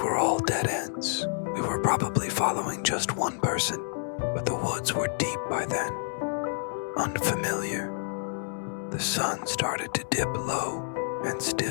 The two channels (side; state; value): right; silent; digital silence